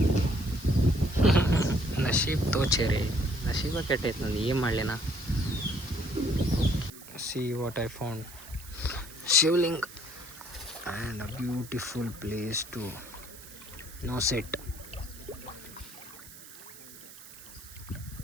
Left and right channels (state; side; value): noise; right; hiss, 17 dB below the sound